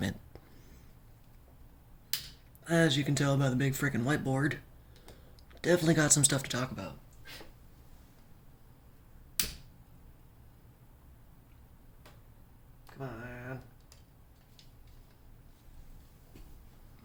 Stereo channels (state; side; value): identical; both; correlation 1.00